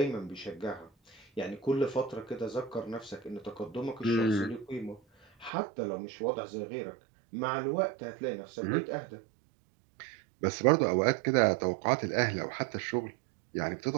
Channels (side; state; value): left; drops out; at 5.5 s